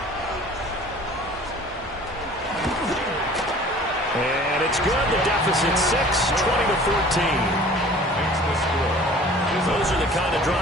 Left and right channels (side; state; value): both; normal; correlation 0.47